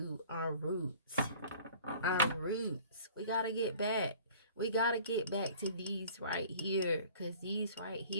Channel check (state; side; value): inverted; both; correlation -0.48